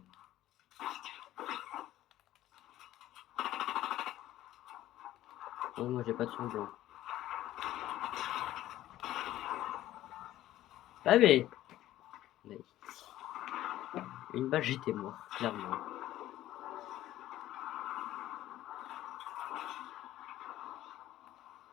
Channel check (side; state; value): right; quieter; 14.1 dB